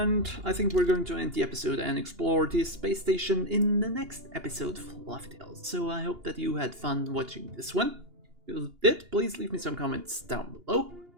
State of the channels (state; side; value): late; left; 2.8 ms